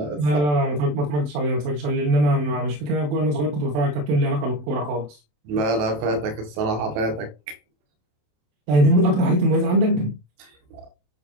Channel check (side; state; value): left; late; 27 ms